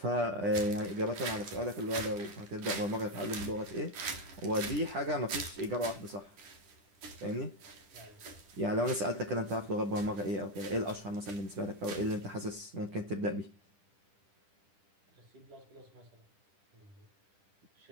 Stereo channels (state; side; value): late; left; 10 ms